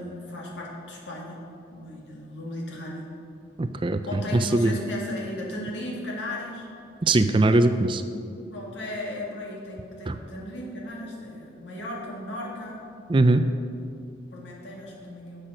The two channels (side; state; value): both; normal; correlation 0.75